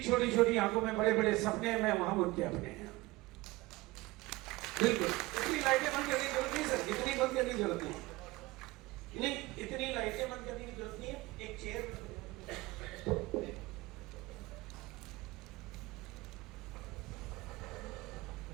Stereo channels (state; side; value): quieter; left; 20.6 dB